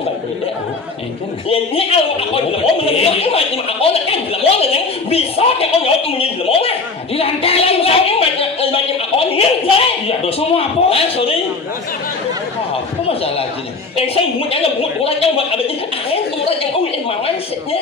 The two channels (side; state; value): right; quieter; 4.1 dB